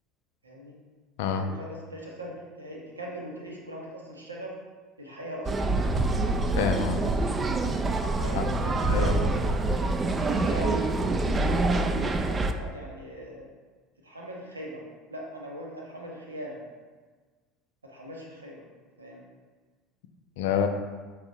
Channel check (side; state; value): both; normal; correlation 0.56